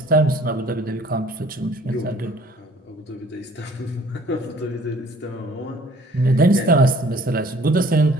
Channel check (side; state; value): both; normal; correlation 0.54